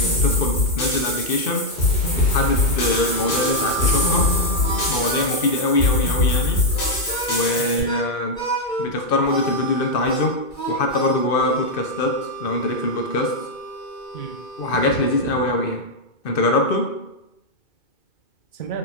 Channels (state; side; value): late; right; 2.6 ms